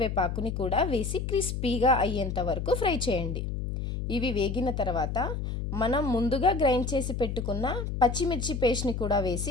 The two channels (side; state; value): left; noise; hum, 3 dB below the sound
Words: కూడా వేసి క్రిస్పీగా అయ్యేంత వరకు ఫ్రై చేయండి. ఇవి వేగిన తర్వాత మనం ముందుగా గ్రైండ్ చేసి పెట్టుకున్న పచ్చిమిర్చి పేస్ట్ని కూడా